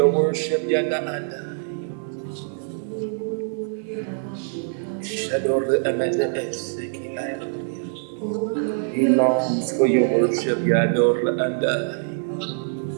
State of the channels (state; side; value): silent; left; digital silence